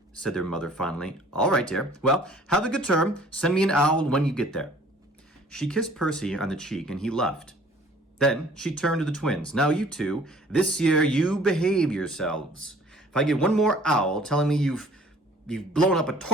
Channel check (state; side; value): normal; both; correlation 0.53